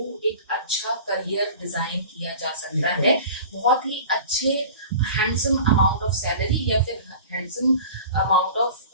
एक अच्छा करियर डिजाइन किया जा सकता है, बहुत ही अच्छे हैंडसम अमाउंट ऑफ सैलरी या फिर हैंडसम अमाउंट ऑफ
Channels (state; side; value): inverted; both; correlation -0.40